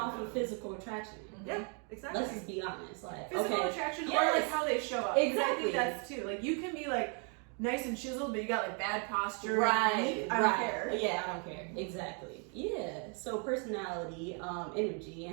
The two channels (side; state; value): left; quieter; 38.3 dB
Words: off know. of physical attraction. Yeah, exactly. Let's just be honest. Like, Physical okay, attraction or Yes. like how they show up. 'Cause I Exactly. think that's too. Like you can be like nice and chiseled, but you got like bad posture. right, I don't care. Yeah, I don't care. Exactly. Yeah. So personality, energy,